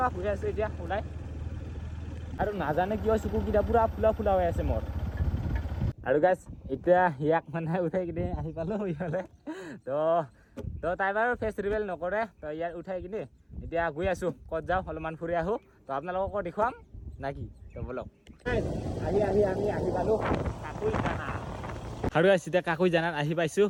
গৈ আছোঁ এতিয়া ওলাই আৰু নাজানে কিয় চকুকেইটা পূৰা ফুলা ফুলা হৈ আছে মোৰ আৰু গাইছ এতিয়া ইয়াক মানে উঠাই কিনে আহি পালোঁ ইফালে তো তাই বাৰু ফেচ ৰিভেল নকৰে তো ইয়াত উঠাই কিনে এতিয়া গৈ আছোঁ ক'ত যাওঁ অলপমান ফুৰি আহোঁ তো আপোনালোককো দেখুৱাম নাকি তো বলক আমি আহি পালোঁ কাকুইজানা আৰু এতিয়া কাকুইজানাত আহি পাইছোঁ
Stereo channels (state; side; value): identical; both; correlation 1.00